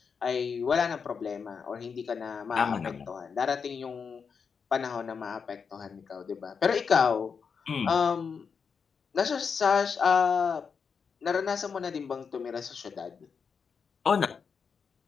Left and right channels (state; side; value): quieter; right; 6.0 dB